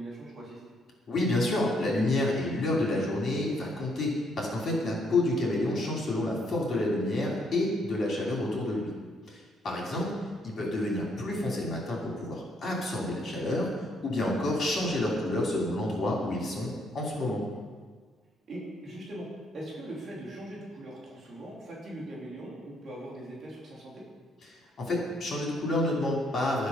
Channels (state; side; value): normal; both; correlation 0.71